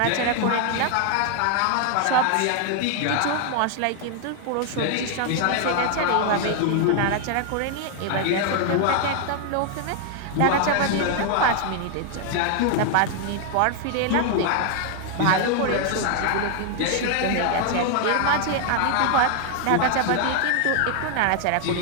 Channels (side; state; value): both; different; correlation 0.00